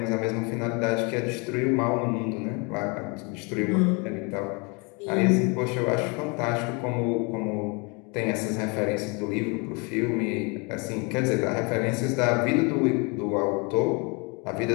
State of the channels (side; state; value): right; quieter; 31.2 dB